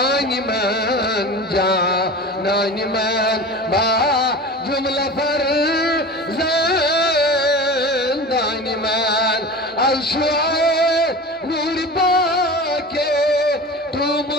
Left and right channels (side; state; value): both; normal; correlation 0.33